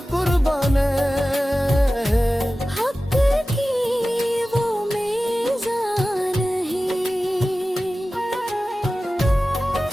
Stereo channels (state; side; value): normal; both; correlation 0.95